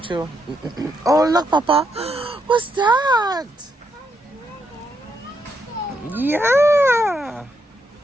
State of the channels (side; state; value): both; normal; correlation 0.79